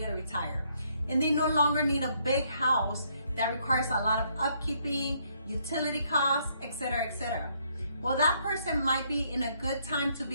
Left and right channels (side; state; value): both; inverted; correlation -0.70